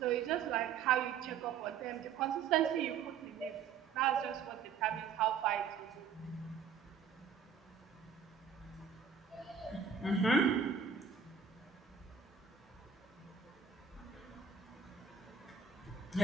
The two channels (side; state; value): left; quieter; 6.9 dB